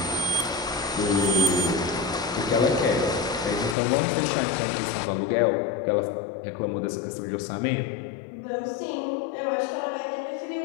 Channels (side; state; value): right; drops out; at 3.8 s